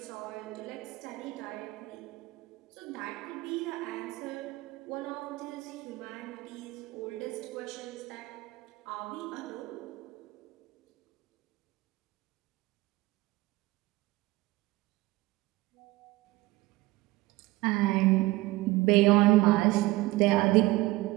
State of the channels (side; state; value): left; quieter; 19.3 dB